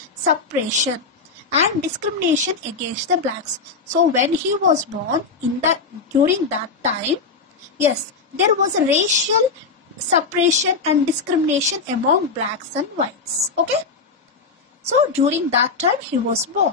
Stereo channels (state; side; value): quieter; right; 4.6 dB